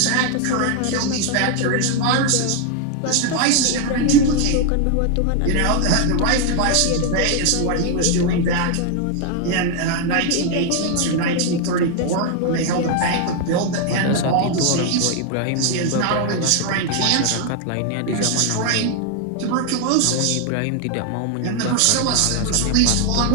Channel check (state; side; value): different; both; correlation 0.01